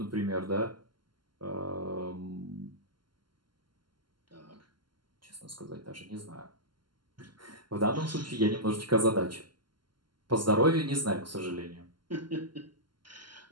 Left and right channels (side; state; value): left; late; 0.72 ms